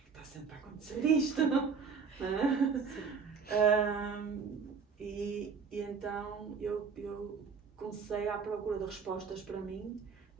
está sempre a acontecer isto, não é? E então eu comecei à procura de respostas para mim,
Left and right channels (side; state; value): left; quieter; 5.6 dB